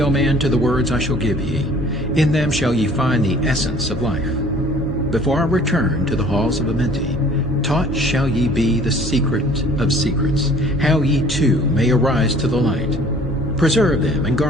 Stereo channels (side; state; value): both; normal; correlation 0.52